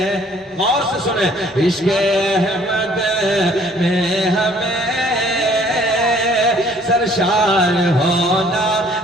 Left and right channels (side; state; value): both; normal; correlation 0.58